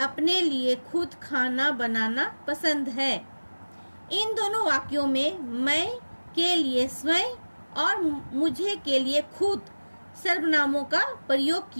अपने लिए खुद खाना बनाना पसंद है। इन दोनों वाक्यों में मैं के लिए स्वयं और मुझे के लिए खुद सर्वनामों का प्रयोग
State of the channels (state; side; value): inverted; both; correlation -1.00